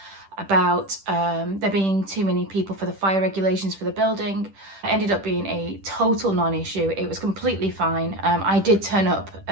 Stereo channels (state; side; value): late; left; 10 ms